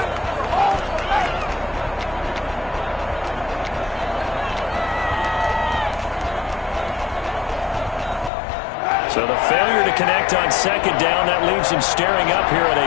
So the failure to connect on 2nd down, that leaves him staring up here at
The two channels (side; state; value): right; drops out; at 8.3 s